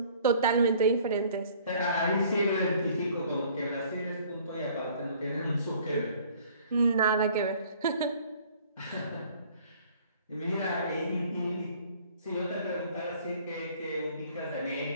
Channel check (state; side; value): inverted; both; correlation -0.55